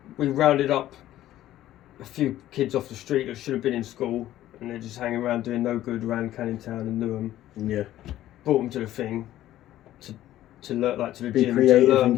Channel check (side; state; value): right; quieter; 13.7 dB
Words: we rounded up a few kids off the street that should have been in school, and they're just hanging around doing no good around Canning Town and Newham. Yeah. Brought them to the thing to learn, like to the Be gym, creative to learn and